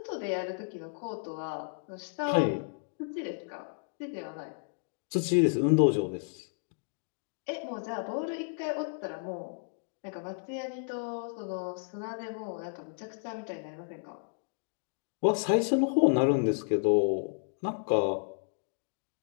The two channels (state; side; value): silent; right; digital silence